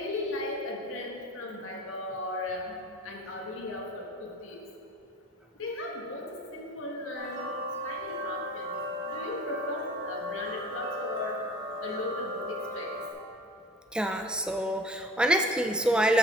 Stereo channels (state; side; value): normal; both; correlation 0.42